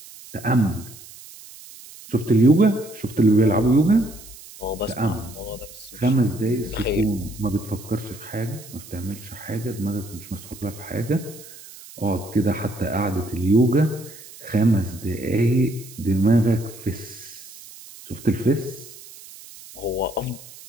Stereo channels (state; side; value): noise; right; hiss, 18 dB below the sound